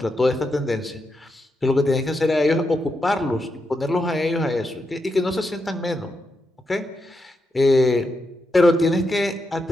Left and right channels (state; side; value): normal; both; correlation 0.84